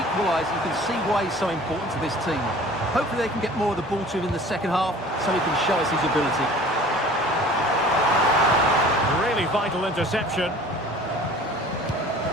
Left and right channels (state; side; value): normal; both; correlation 0.46